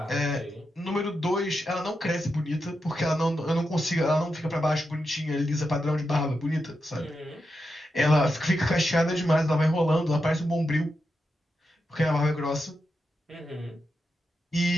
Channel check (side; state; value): both; normal; correlation 0.87